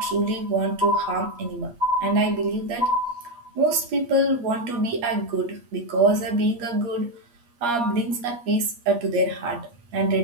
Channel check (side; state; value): left; late; 8.4 ms